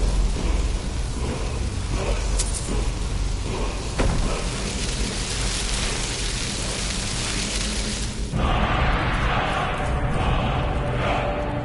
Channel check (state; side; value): identical; both; correlation 1.00